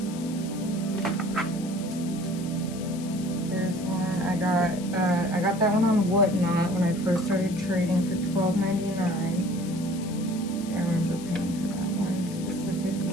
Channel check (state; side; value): noise; left; hiss, 16 dB below the sound